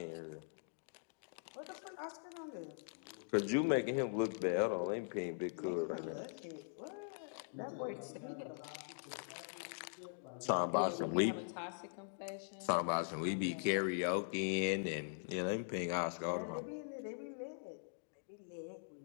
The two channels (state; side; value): silent; right; digital silence